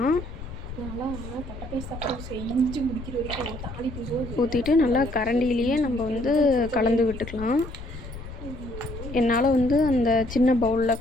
ஊற்றிட்டு நல்லா கரண்டிலேயே நம்ம கலந்து விட்டுக்கலாம். என்னால் அந்த சின்ன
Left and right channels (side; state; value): left; noise; rumble, 12 dB below the sound